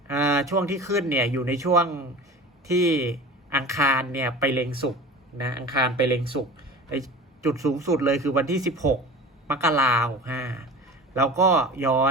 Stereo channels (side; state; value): both; normal; correlation 0.36